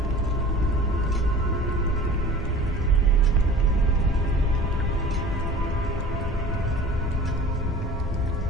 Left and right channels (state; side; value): normal; both; correlation 0.42